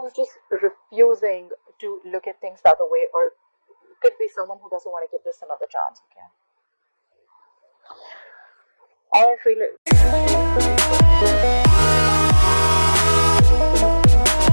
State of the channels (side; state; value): both; inverted; correlation -1.00